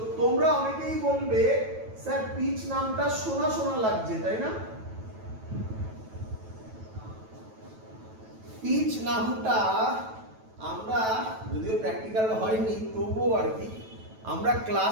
তোমরা অনেকেই বলবে স্যার পিচ নামটা শোনা শোনা লাগছে তাই না? পিচ নামটা আমরা যদিও প্র্যাকটিক্যাল হয়নি তবুও আর কি আমরা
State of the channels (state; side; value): late; left; 9.2 ms